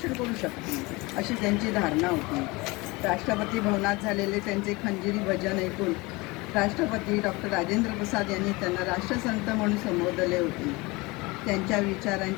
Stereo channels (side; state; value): right; quieter; 23.9 dB